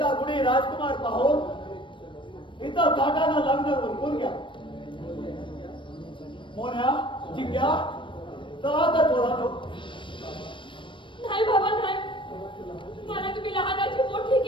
कुणी राजकुमार पाहून इथं थाटानं लग्न उरकून घ्या. मोन्या जिग्या चला तर पोरांनो. नाही बाबा नाही, मला तुम्ही लहानाची मोठी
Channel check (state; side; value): late; right; 0.24 ms